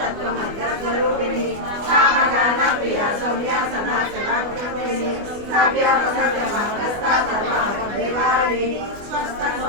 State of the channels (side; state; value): left; late; 25 ms